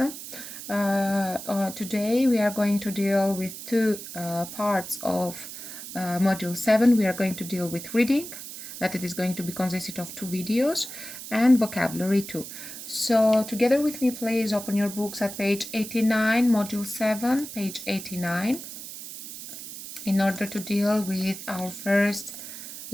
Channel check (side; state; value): right; noise; hiss, 11 dB below the sound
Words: Today we are going to deal with two parts of module 7. We are going to deal with reading, that it is going to be consisted of two videos, and vocabulary too. So together with me, please open your books at page 89, module 7, page 89, in order to deal with our first